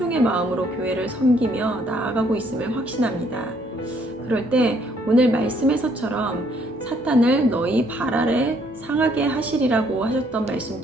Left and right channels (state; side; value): normal; both; correlation 0.66